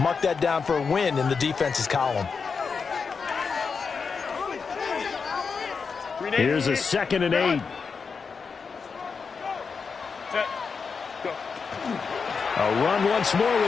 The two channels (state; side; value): quieter; right; 5.4 dB